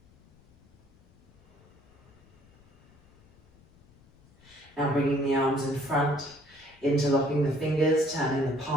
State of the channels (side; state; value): left; noise; rumble, 29 dB below the sound